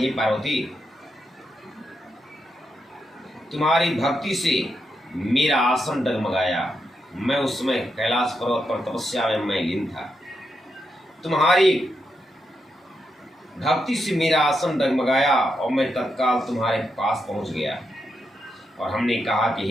पार्वती, तुम्हारी भक्ति से मेरा आसन डगमगाया। मैं उस समय कैलाश पर्वत पर तपस्या में मैं लीन था। तुम्हारी भक्ति से मेरा आसन डगमगाया और मैं तत्काल तुम्हारे पास पहुंच गया। और हमने कहा कि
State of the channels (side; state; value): both; normal; correlation 0.84